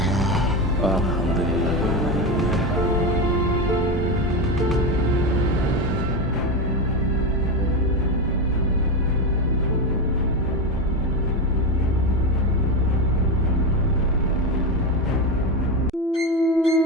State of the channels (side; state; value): both; normal; correlation 0.15